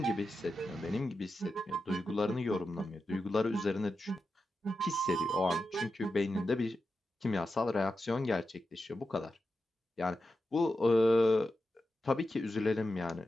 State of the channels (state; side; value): normal; both; correlation 0.90